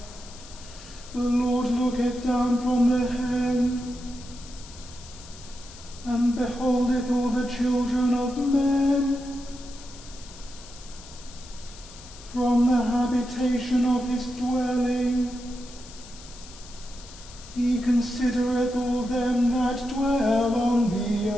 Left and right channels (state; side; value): noise; left; hiss, 18 dB below the sound